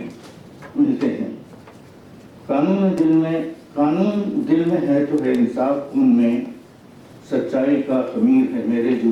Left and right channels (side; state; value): both; identical; correlation 1.00